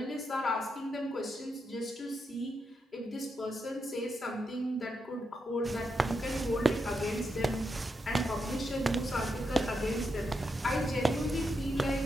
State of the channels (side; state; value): both; normal; correlation 0.84